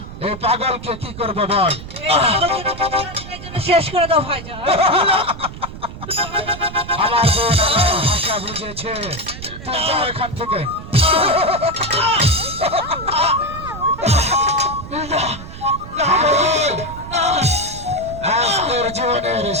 এই পাগলকে কি করবো বল? শেষ করে দাও ভাইজান। আমার বোন আমার ভাষা বুঝেছে, তুই যা এখান থেকে। পাগল, আজ তোর জীবনের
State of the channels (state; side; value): noise; right; rumble, 12 dB below the sound